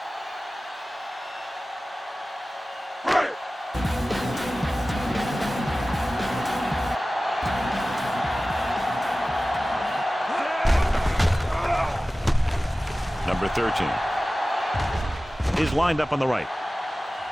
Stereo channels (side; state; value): both; normal; correlation 0.96